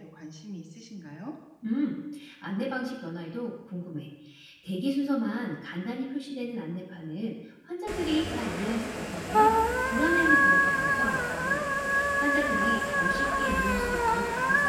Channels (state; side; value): identical; both; correlation 1.00